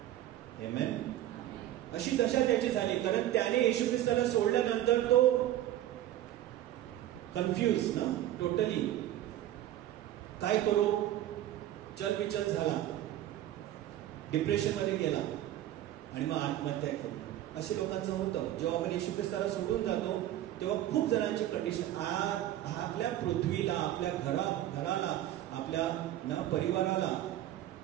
आमेन. अशी दशा त्याची झाली, कारण त्याने येशू ख्रिस्ताला सोडल्यानंतर तो कन्फ्यूज ना, टोटली काय करू, चलबिचल झाला, डिप्रेशन मध्ये गेला आणि मग आत्महत्या केली. असे लोकांचं होतं. जेव्हा आपण येशू ख्रिस्ताला सोडून जातो, तेव्हा खूप जणांची कंडिशन, आपल्या पृथ्वीला, आपल्या घराला, आपल्या परिवाराला,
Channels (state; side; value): quieter; left; 13.1 dB